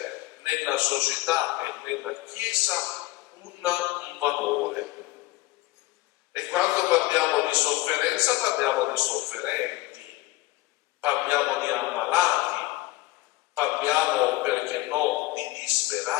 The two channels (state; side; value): quieter; right; 19.0 dB